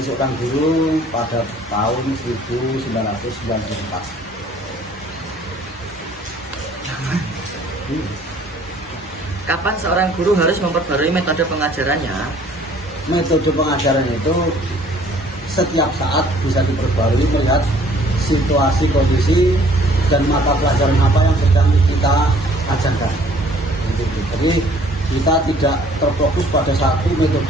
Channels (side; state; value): both; normal; correlation 0.57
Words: seorang guru pada tahun 1994. Kapan seorang guru harus memperbarui metode pengajarannya? Metode pengajaran itu setiap saat bisa diperbarui melihat situasi, kondisi, dan mata pelajaran apa yang sedang kita ajarkan. Jadi kita tidak terfokus pada satu